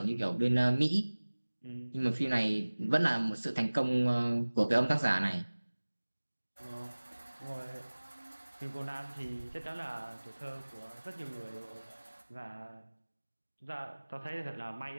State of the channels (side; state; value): both; inverted; correlation -1.00